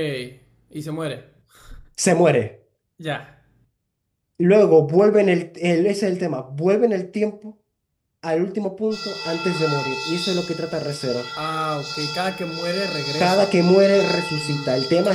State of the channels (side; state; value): both; identical; correlation 1.00